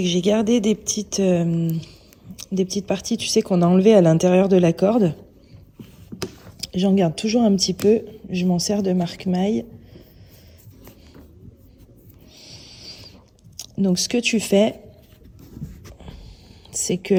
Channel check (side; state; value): both; identical; correlation 1.00